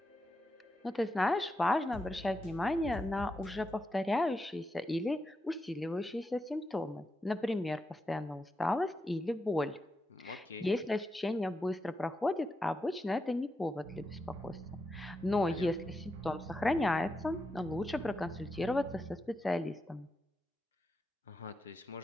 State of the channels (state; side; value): normal; both; correlation 0.87